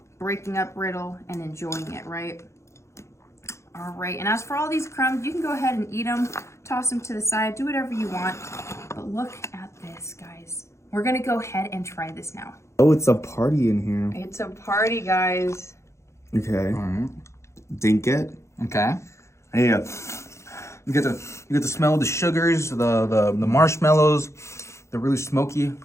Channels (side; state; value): right; late; 0.14 ms